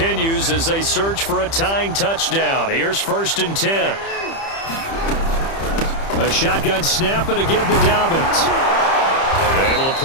as they search for a tying touchdown. Here's 1st and 10. A shotgun snap and a give to Dobbins. Able to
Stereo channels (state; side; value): late; right; 30 ms